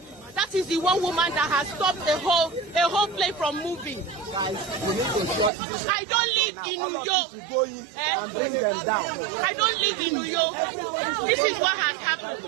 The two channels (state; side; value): drops out; left; at 5.5 s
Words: That is the one woman that has stopped a whole plane from moving. I don't live in New York. I don't live in New York. This is what has happened.